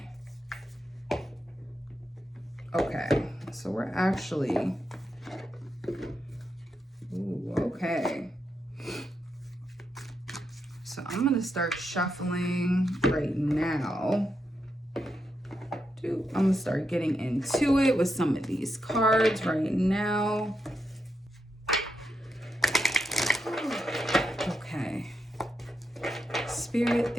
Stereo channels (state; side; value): normal; both; correlation 0.84